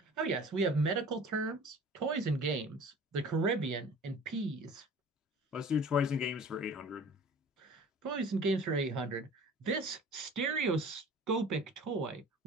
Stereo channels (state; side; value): normal; both; correlation 0.43